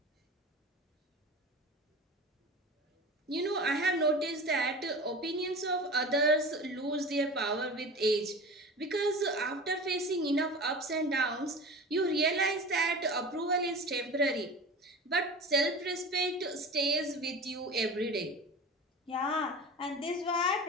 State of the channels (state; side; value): normal; both; correlation 0.34